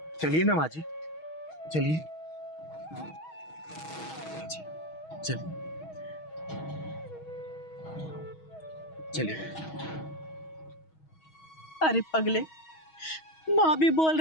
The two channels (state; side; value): late; right; 6.3 ms